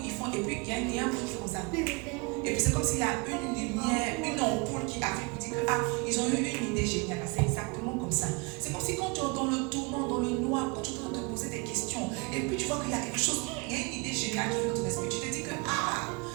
ils font, et puis il y a un bruit qui fait comme ça. Et puis c'est comme s'il y a une lumière, une ampoule qui arrive pour dire que ils ont eu une idée géniale. C'est exactement comme ça. C'est comme si quand tu es dans le tourment, dans le noir, quand tu es en train de te poser des questions, et puis tu vois qu'il y a quelque chose, il y a une idée géniale qui vient dans ton esprit. Tu te dis que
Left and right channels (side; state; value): left; quieter; 29.5 dB